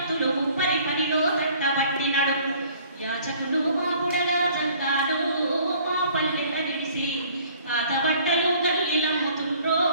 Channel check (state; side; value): inverted; both; correlation -0.55